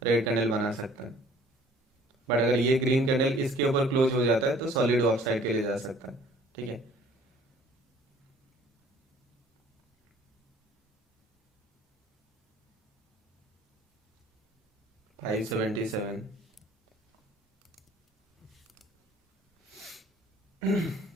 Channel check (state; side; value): normal; both; correlation 0.54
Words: रेड कैंडल बना सकता है। बट अगर ये ग्रीन कैंडल इसके ऊपर क्लोज हो जाता है तो सॉलिड ऑफ साइड के लिए जा सकता है। ठीक है, 577।